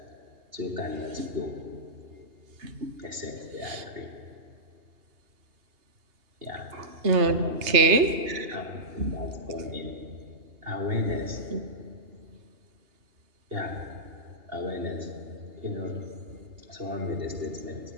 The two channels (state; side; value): late; left; 2.8 ms